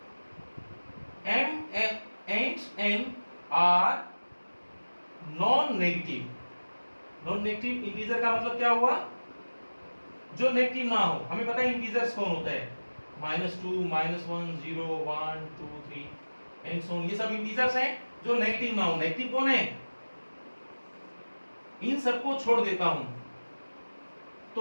m and n are non-negative। non-negative integer का मतलब क्या हुआ, जो नेगेटिव ना हो। हमें पता है इंटीजर्स कौन होता है, -2 -1 0 1 2 3 एंड सो ऑन, ये सब इंटीजर्स हैं जो नेगेटिव ना हो। नेगेटिव कौन है, इन सबको छोड़ देता हूं,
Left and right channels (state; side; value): inverted; both; correlation -1.00